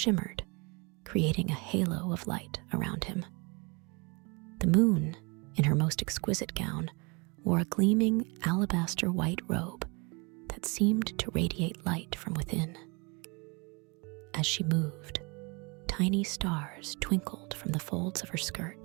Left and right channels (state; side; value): quieter; left; 29.5 dB